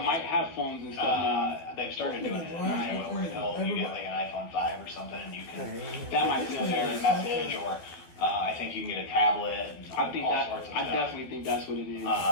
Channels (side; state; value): right; late; 12 ms